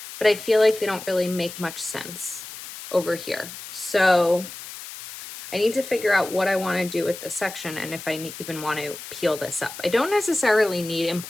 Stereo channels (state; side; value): noise; left; hiss, 12 dB below the sound